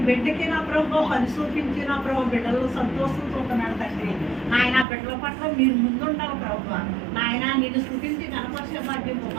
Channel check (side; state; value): left; drops out; at 4.9 s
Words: బిడ్డకి నా ప్రభు పని చూపించి నా ప్రభు బిడ్డలు సంతోషం చూస్తున్నాడు తండ్రి. నాయన బిడ్డల పట్ల మీరు ముందుండాలి ప్రభు నాయన. నిన్ను స్థుతించి కనపరిచే భాగ్యం